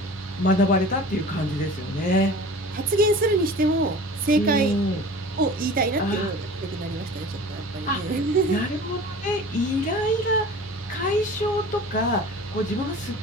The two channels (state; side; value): normal; both; correlation 0.40